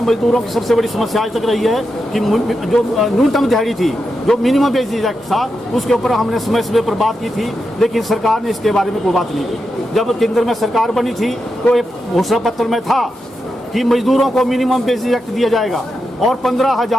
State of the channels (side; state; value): both; normal; correlation 0.87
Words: की सबसे बड़ी समस्या आज तक रही है कि जो न्यूनतम दिहाड़ी थी, जो मिनिमम वेजेज एक्ट था, उसके ऊपर हमने समय समय पर बात की थी, लेकिन सरकार ने इसके बारे में कोई बात नहीं की। जब केंद्र में सरकार बनी थी तो एक घोषणा पत्र में था कि मजदूरों को मिनिमम वेजेज एक्ट दिया जाएगा और